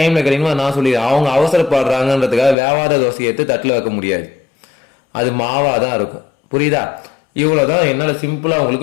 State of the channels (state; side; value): drops out; right; at 2.6 s